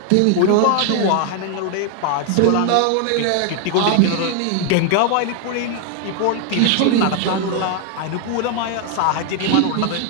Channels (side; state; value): both; different; correlation 0.00